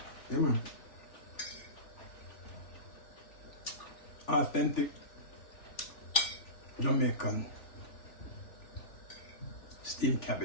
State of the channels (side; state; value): right; late; 3.5 ms